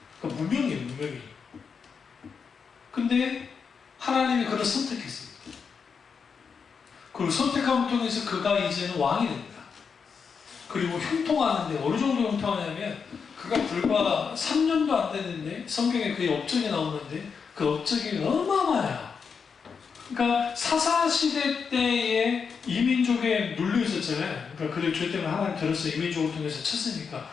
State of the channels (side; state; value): right; quieter; 6.0 dB